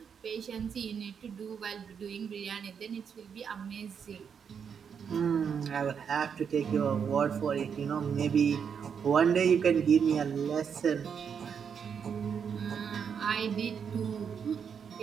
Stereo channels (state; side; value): quieter; left; 7.1 dB